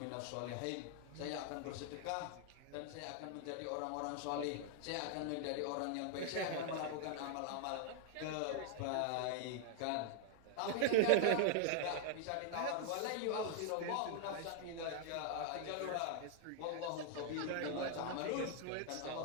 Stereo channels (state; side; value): different; both; correlation 0.00